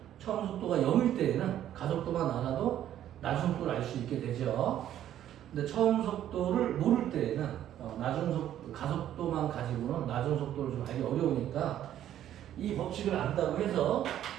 처음 속도가 0일 때에는 가속도만 알아도 나중 속도를 알 수 있게 되죠. 근데 처음 속도를 모를 때에는 가속도만 가지고는 나중 속도를 좀 알기 어려우니까 이 법칙을 안다고 해서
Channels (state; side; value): quieter; left; 11.5 dB